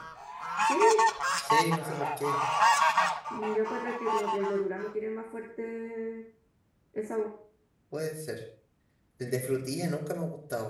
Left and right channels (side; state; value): both; identical; correlation 1.00